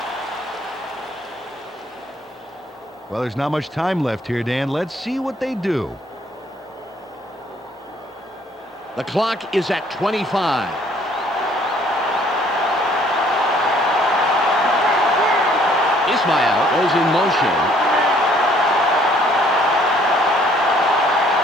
Well, there's not much time left here, Dan. Let's see what they do. The clock is at 25. Ismail goes in motion.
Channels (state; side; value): normal; both; correlation 0.61